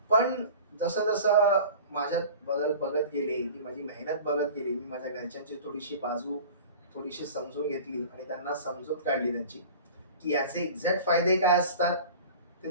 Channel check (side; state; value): both; inverted; correlation -0.39